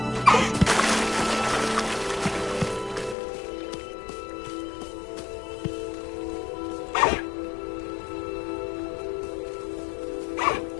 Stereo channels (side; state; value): right; drops out; at 3.2 s